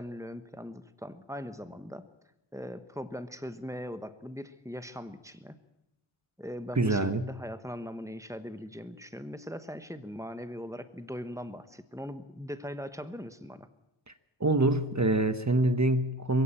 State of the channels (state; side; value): normal; both; correlation 0.39